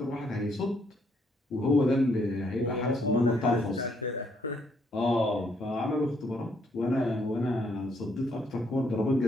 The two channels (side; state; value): both; normal; correlation 0.71